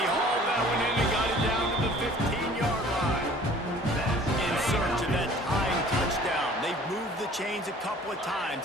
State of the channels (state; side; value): normal; both; correlation 0.50